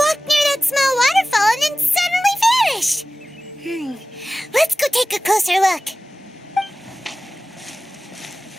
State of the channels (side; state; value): both; normal; correlation 0.96